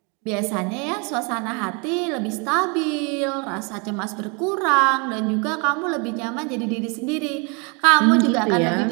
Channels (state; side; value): quieter; left; 32.8 dB